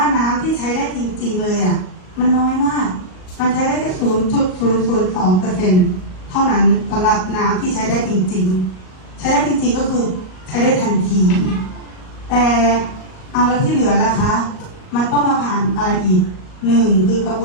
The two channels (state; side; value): late; right; 38 ms